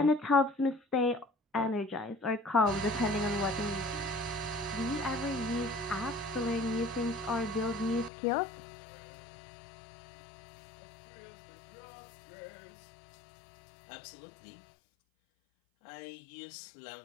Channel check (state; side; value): drops out; right; at 8.1 s